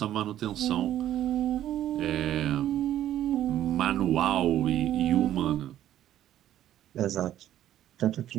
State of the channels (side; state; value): left; quieter; 12.2 dB